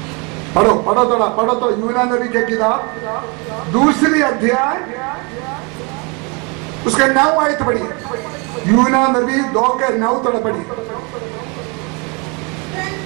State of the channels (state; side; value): quieter; left; 31.3 dB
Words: पढ़ो पढ़ो थोड़ा, पढ़ो तो यूना नबी के किताब 2 अध्याय उसके 9 आयत पढ़ी, यूना नबी 2 के 9 थोड़ा पढ़ी।